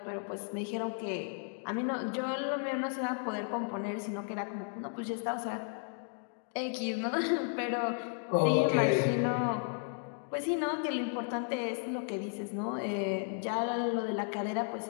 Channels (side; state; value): right; silent; 55 dB below the other